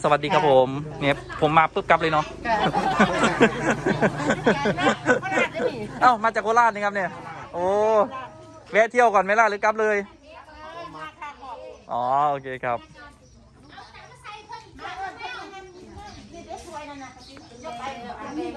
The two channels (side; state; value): both; identical; correlation 1.00